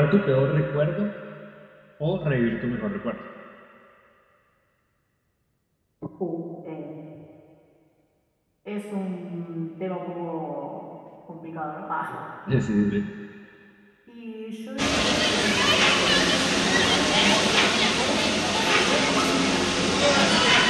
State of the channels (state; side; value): identical; both; correlation 1.00